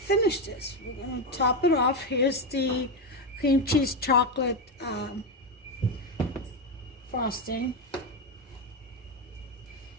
this. We're going to top it off. Here's the cream cheese chocolate frosting.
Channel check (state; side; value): normal; both; correlation 0.10